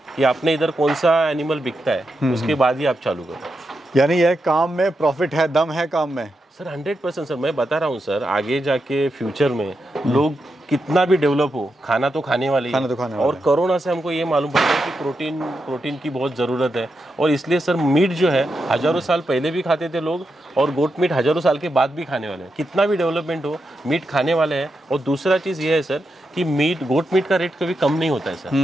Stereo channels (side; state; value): both; normal; correlation 0.86